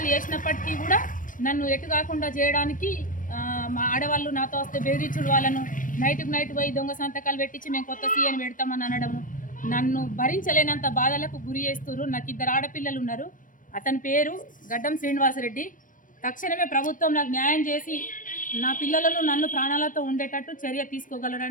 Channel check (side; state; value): right; late; 0.39 ms